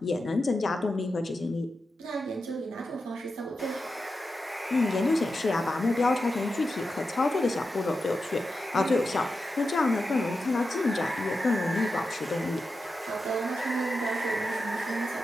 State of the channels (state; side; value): normal; both; correlation 0.90